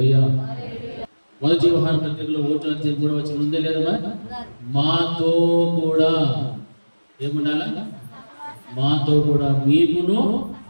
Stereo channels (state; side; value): inverted; both; correlation -1.00